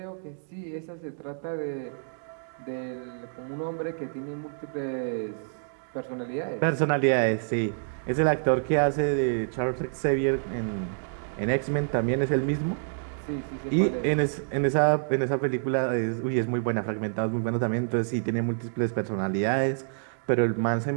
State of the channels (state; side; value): silent; left; digital silence